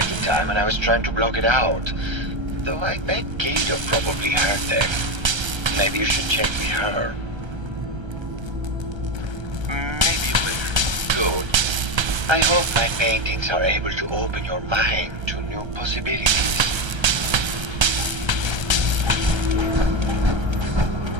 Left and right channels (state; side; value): late; left; 1.3 ms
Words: the time and I was trying to block it out. Though I bet Gator probably heard them. Maybe you should check with her. Maybe later. Good. I hope my paintings are able to open your mind to new possibilities.